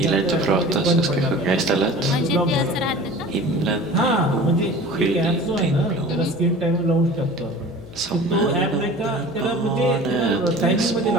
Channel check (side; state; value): left; noise; hum, 18 dB below the sound